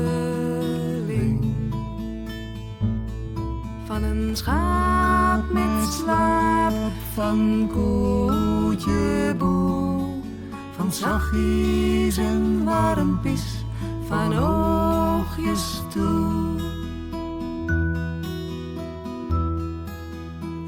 Van een schaap met slaap, van koetje boe, van zachtjes en warmpies, van oogjes toe.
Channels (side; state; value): both; identical; correlation 1.00